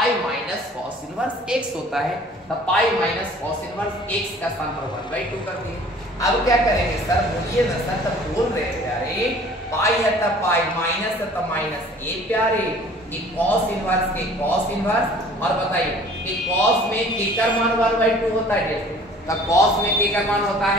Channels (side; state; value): both; normal; correlation 0.50